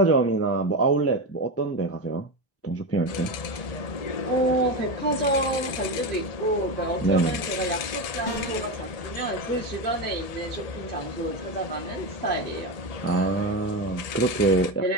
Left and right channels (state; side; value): late; right; 1.7 ms